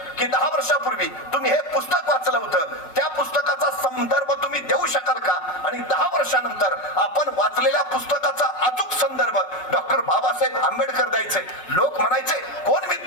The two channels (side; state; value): right; late; 5.3 ms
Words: की 10 वर्षापूर्वी तुम्ही हे पुस्तक वाचलं होतं, त्या पुस्तकाचा संदर्भ तुम्ही देऊ शकाल का, आणि 10 वर्षानंतर आपण वाचलेल्या पुस्तकाचा अचूक संदर्भ डॉक्टर बाबासाहेब आंबेडकर द्यायचे. लोक म्हणायचे कोण